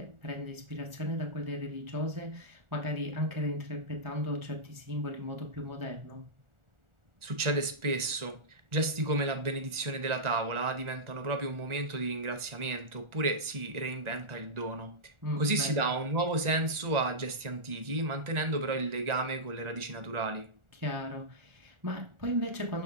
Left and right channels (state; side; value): late; left; 1.4 ms